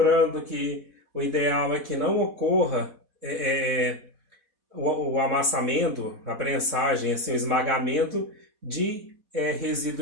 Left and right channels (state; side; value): late; left; 4.1 ms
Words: que o ideal é que não ocorra o amassamento, a prensagem, assim, o esmagamento de